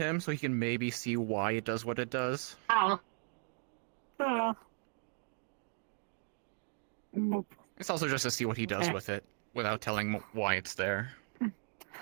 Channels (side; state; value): left; silent; 53 dB below the other